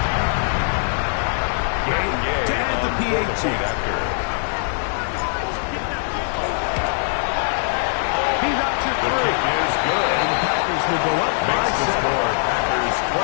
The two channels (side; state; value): right; silent; digital silence